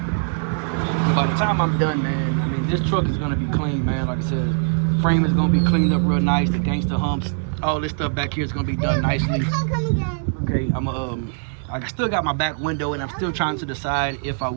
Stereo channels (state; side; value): silent; left; 64 dB below the other